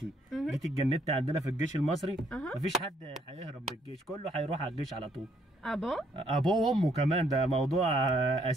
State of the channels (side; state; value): both; normal; correlation 0.69